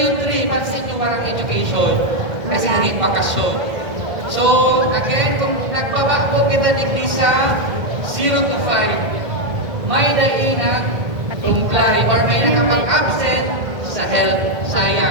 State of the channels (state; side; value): late; left; 2.1 ms